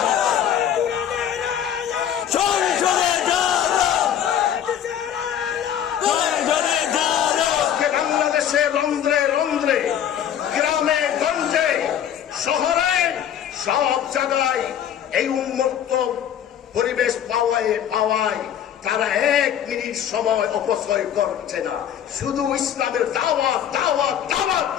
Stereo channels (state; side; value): quieter; right; 9.7 dB